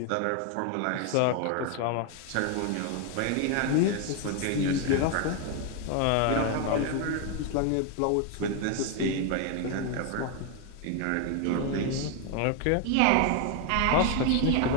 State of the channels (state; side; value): different; both; correlation 0.01